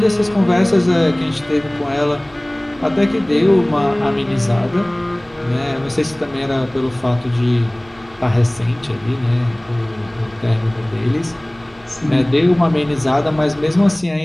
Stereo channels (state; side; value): noise; right; hum, 28 dB below the sound